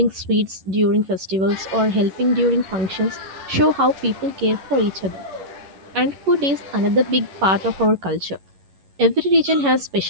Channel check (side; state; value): left; late; 11 ms